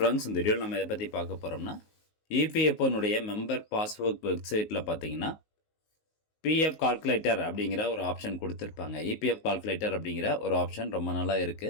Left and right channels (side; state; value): right; late; 19 ms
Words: இந்த வீடியோவில் நம்ம எதை பற்றி பார்க்க போகிறோம்னா, இபிஎஃப்ஓனுடைய மெம்பர் பாஸ்புக் வெப்சைட்டில் பார்த்தீங்கன்னா, பிஎஃப் கால்குலேட்டர் அப்படிங்கிற ஒரு ஆப்ஷன் கொடுத்துருப்பாங்க. இபிஎஃப் கால்குலேட்டர் அப்படிங்கிற ஒரு ஆப்ஷன் ரொம்ப நாளாக